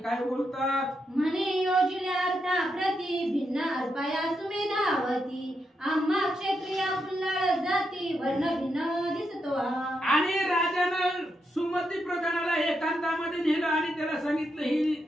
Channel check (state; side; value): normal; both; correlation 0.83